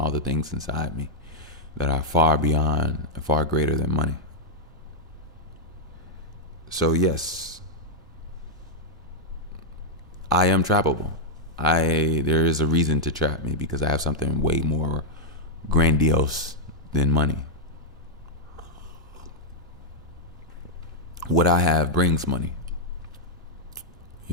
the things inside me that are far beyond and far greater than money. So yes, I am trappable. There is a reason to trap me because I have something way more grandiose than money. What I have brings money.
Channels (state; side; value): normal; both; correlation -0.05